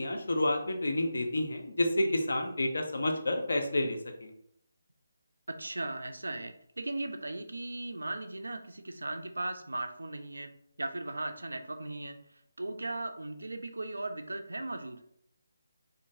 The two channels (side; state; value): both; inverted; correlation -0.92